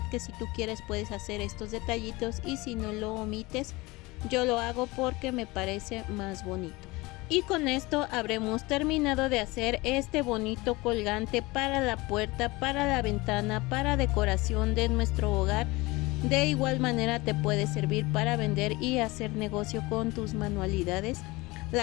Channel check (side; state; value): right; quieter; 22.4 dB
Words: que si tú quieres puedes hacer estos detallitos, y si no lo omites, yo lo hago porque me parece más bonito. Y con esto habremos terminado de hacer este bonito colgante para la puerta, para la ventana, para decoración de nuestro hogar. De igual manera te puede servir para vender y hacer negocio con tus manualidades.